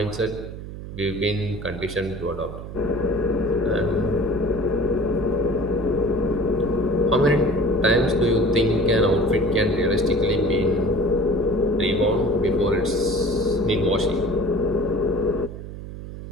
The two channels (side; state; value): right; noise; hum, 11 dB below the sound